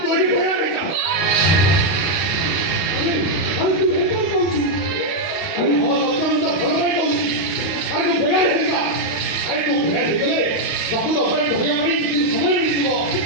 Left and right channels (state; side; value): late; right; 32 ms